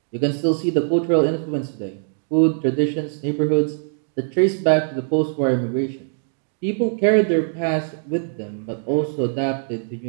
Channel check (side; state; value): left; silent; digital silence